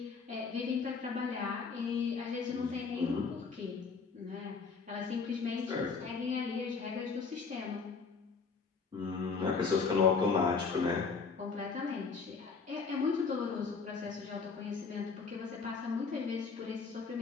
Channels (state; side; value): quieter; right; 5.0 dB